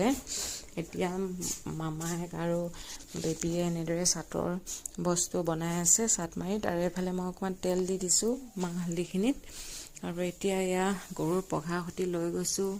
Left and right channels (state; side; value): identical; both; correlation 1.00